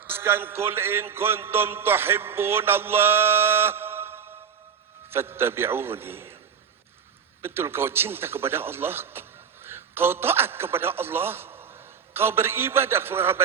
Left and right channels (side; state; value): left; quieter; 7.1 dB